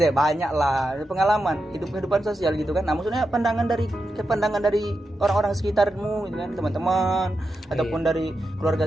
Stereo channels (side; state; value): both; normal; correlation 0.88